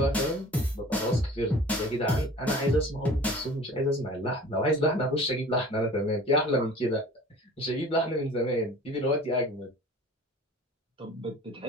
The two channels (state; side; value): normal; both; correlation 0.44